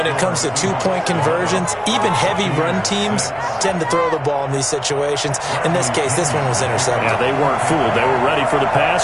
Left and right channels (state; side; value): identical; both; correlation 1.00